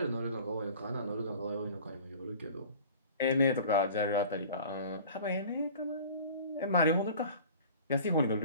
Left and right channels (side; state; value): both; inverted; correlation -0.43